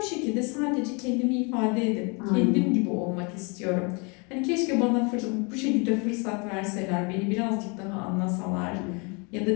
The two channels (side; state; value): right; quieter; 31.9 dB